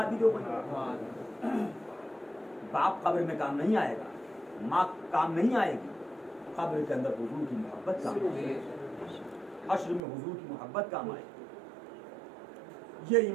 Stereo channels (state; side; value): drops out; left; at 10.0 s